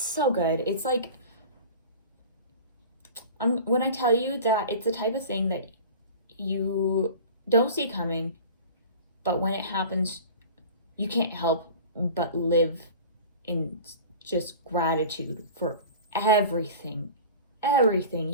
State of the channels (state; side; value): inverted; both; correlation -0.39